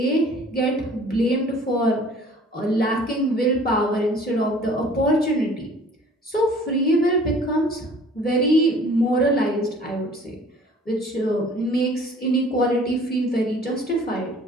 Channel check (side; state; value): both; normal; correlation 0.51